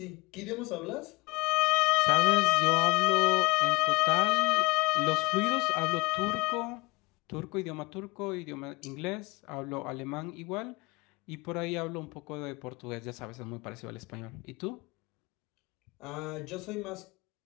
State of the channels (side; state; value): right; quieter; 24.6 dB